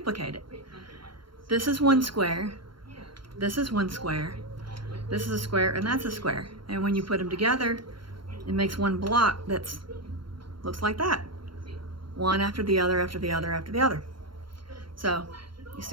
it. This is one square, this is one square, this is a square, and that's a square. And when you put them together, it makes one block that's looks like that. One after the other, after the other, after the other. So you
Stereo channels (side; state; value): left; late; 0.73 ms